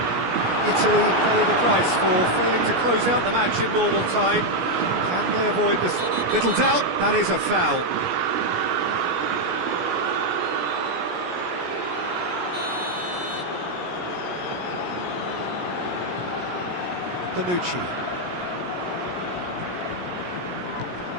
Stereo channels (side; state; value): left; late; 17 ms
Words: Italy pay the price for failing to close out the match in normal time. Can they avoid this? Little doubt, that is a foul. Bonucci.